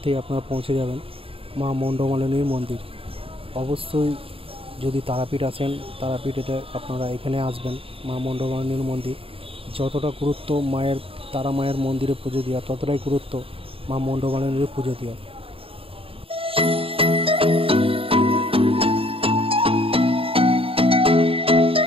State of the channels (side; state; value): left; late; 0.27 ms